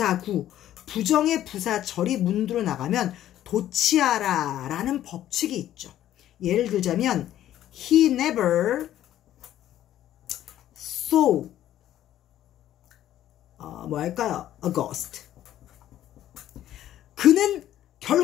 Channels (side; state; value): right; quieter; 12.4 dB